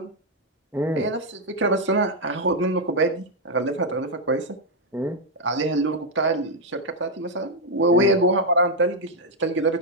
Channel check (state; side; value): normal; both; correlation 0.00